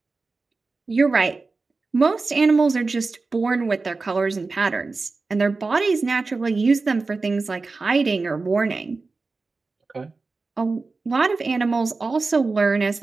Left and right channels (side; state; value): left; quieter; 3.9 dB